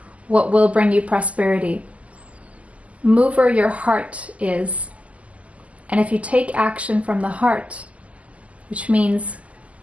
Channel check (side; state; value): left; late; 0.068 ms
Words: what will bring you prosperity. Move where your heart is. And if you take action from the heart, which means